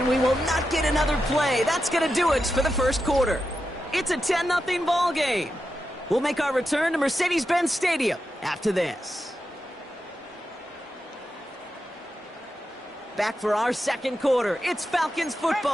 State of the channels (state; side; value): normal; both; correlation 0.88